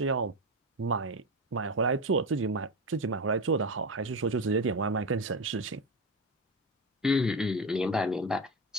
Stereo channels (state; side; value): normal; both; correlation 0.19